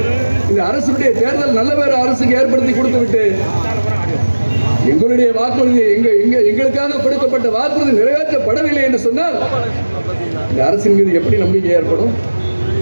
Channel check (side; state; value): both; inverted; correlation -1.00